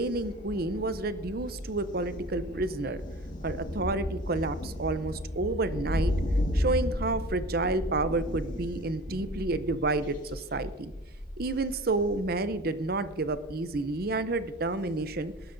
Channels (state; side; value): normal; both; correlation 0.37